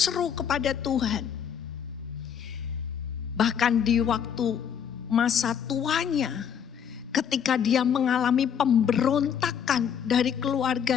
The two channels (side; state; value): right; quieter; 8.0 dB